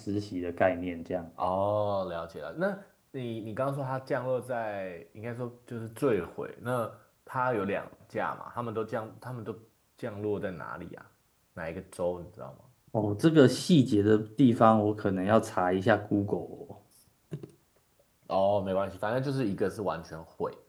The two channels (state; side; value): identical; both; correlation 1.00